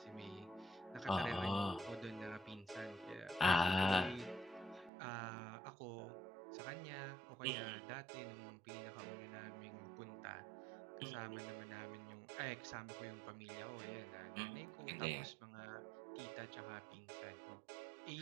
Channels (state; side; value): drops out; left; at 4.9 s